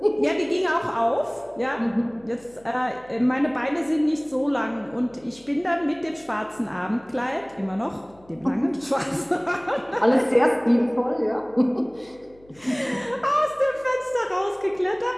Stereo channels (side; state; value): left; noise; hum, 28 dB below the sound